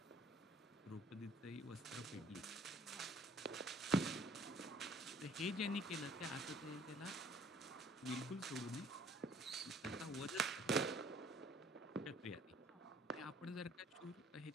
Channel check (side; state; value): both; normal; correlation 0.57